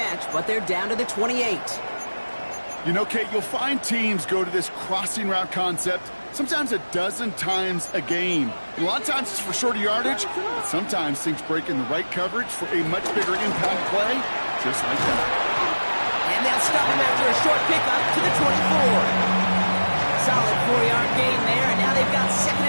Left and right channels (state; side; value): inverted; both; correlation -1.00